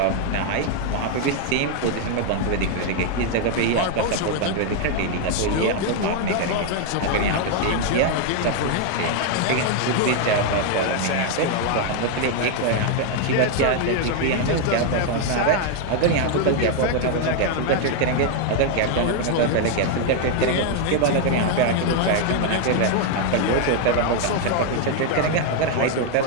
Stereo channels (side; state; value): both; different; correlation 0.00